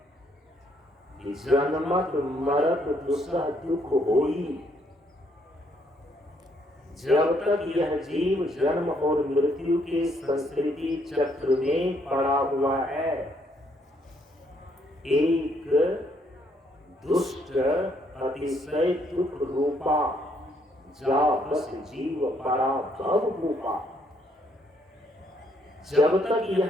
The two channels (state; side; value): normal; both; correlation 0.70